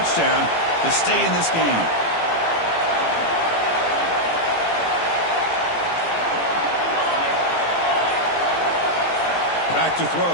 to stay in this game. Back to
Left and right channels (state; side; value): late; right; 18 ms